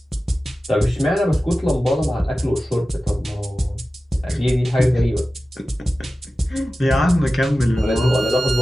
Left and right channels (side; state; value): both; normal; correlation 0.95